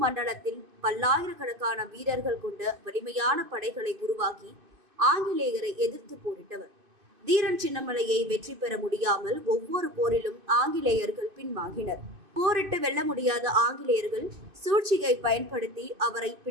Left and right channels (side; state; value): left; late; 2.5 ms